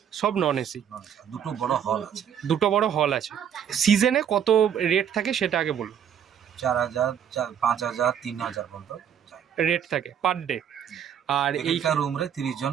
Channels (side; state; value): left; quieter; 8.7 dB